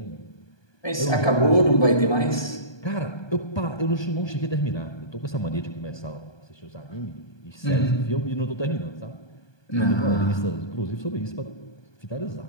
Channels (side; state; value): right; late; 1.2 ms